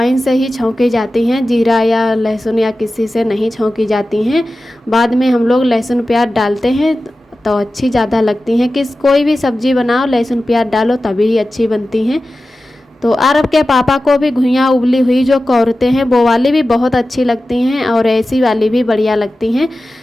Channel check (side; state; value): both; normal; correlation 0.95